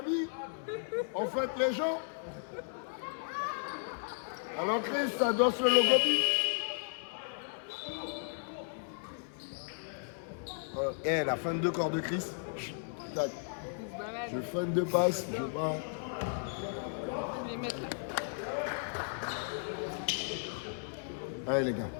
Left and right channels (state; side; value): silent; right; 54 dB below the other